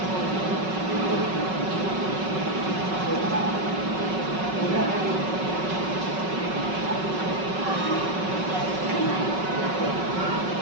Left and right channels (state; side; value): late; left; 5.4 ms